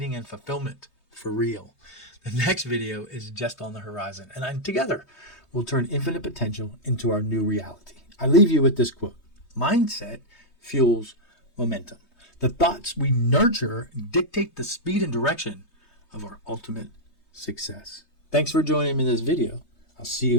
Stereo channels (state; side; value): late; right; 3.2 ms